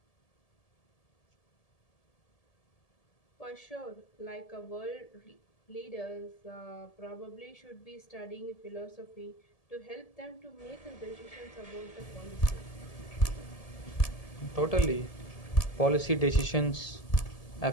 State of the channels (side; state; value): right; late; 1.7 ms